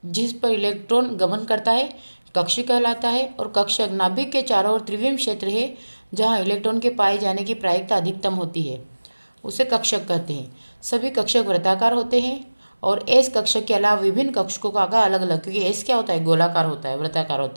जिस पर इलेक्ट्रॉन गमन करता है कक्ष कहलाता है, और कक्षक नाभिक के चारों ओर त्रिविम क्षेत्र है जहां इलेक्ट्रॉन के पाए जाने की प्रायिकता अधिकतम होती है, उसे कक्षक कहते हैं। सभी कक्षक वृत्ताकार होते हैं और एस कक्षक के अलावा विभिन्न कक्षकों का आकार अलग अलग, क्योंकि एस क्या होता है, गोलाकार होता है, वृत्ताकार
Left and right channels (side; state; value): both; inverted; correlation -1.00